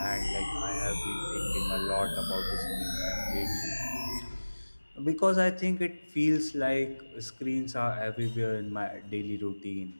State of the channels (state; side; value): inverted; both; correlation -1.00